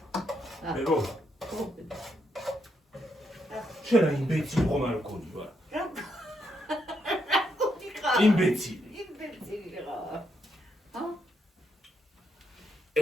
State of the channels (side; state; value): both; normal; correlation 0.78